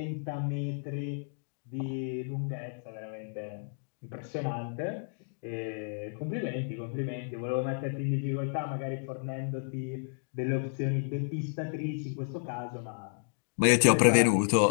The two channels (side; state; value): right; silent; digital silence